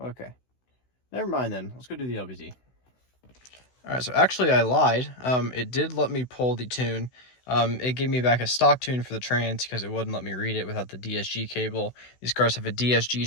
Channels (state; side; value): late; right; 16 ms